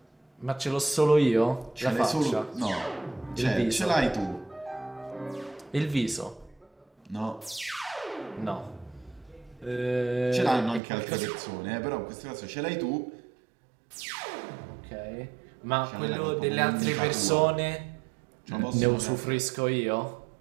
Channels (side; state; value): left; drops out; at 10.8 s